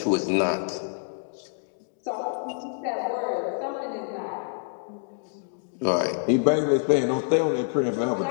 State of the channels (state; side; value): silent; right; digital silence